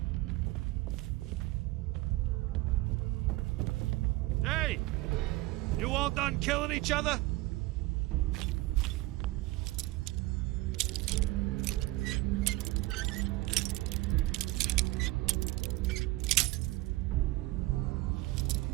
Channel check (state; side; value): quieter; left; 19.8 dB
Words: Hey! You all done killing each other?